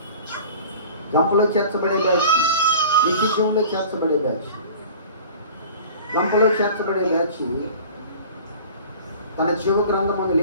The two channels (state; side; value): inverted; both; correlation -0.42